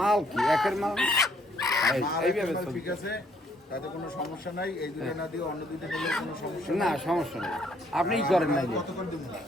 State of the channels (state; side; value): normal; both; correlation 0.66